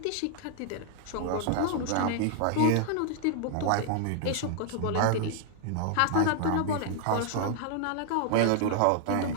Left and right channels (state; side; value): different; both; correlation -0.01